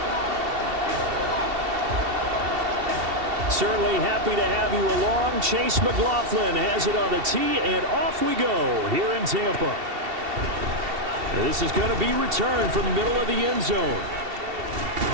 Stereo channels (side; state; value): left; late; 2.7 ms